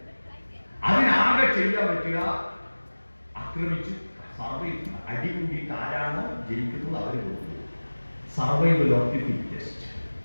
അതിനാകെ ചെയ്യാൻ പറ്റുക ആക്രമിച്ച് അടി കൂടിയിട്ട് ആരാണോ ജയിക്കുന്നത് അവര് കൊടുക്കുന്നത്. സർവൈവൽ ഓഫ് ദി ഫിറ്റസ്റ്റ്,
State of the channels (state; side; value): inverted; both; correlation -1.00